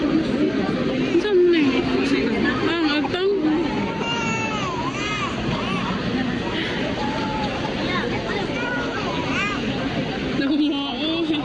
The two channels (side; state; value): right; noise; hum, 20 dB below the sound